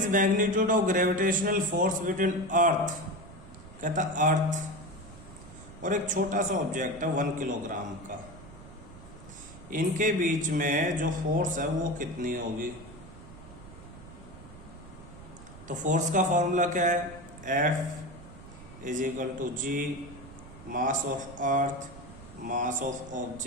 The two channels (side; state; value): right; noise; rumble, 17 dB below the sound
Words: magnitude of gravitational force between अर्थ? कहता अर्थ और एक छोटा सा ऑब्जेक्ट है 1 किलोग्राम का, इनके बीच में जो फोर्स है वो कितनी होगी? तो फोर्स का फॉर्मूला क्या है? F is equal to G mass of earth mass of